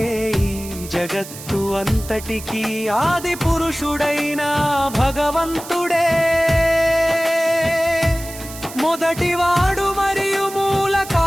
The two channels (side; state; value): right; noise; hiss, 14 dB below the sound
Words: ఈ జగత్తు అంతటికీ ఆది పురుషుడైన భగవంతుడే మొదటివాడు మరియు మూల